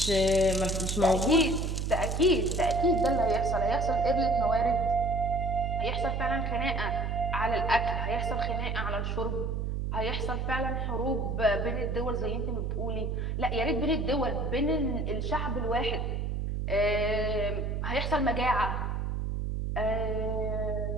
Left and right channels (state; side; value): noise; right; hum, 1 dB below the sound